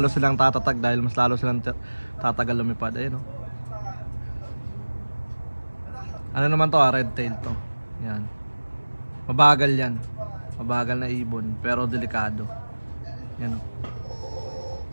silang tatatag dahil mas lalo silang tatagal lumipad. Ayun no. Ano naman to, red tail to. Yan. Mabagal yan. Mabagal na ibon, pero delikado. Yan o.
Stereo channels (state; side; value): inverted; both; correlation -1.00